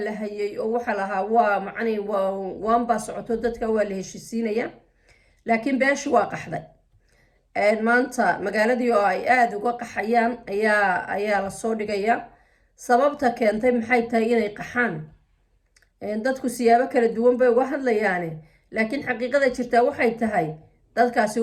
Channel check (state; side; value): identical; both; correlation 1.00